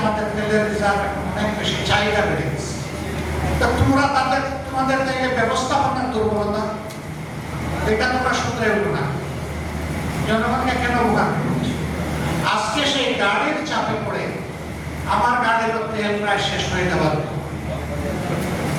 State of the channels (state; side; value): identical; both; correlation 1.00